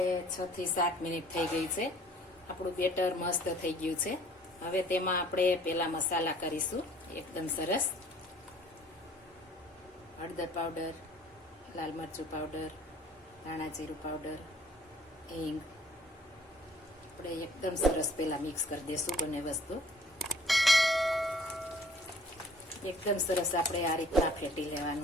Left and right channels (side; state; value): both; normal; correlation 0.55